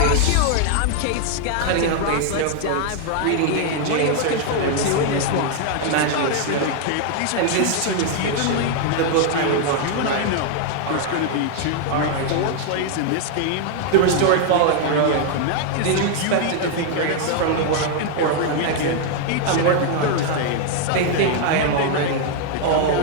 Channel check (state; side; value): different; both; correlation 0.00